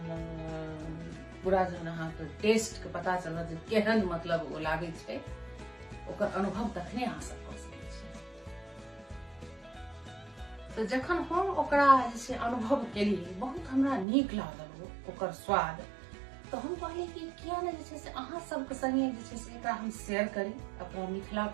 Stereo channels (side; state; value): left; drops out; at 14.1 s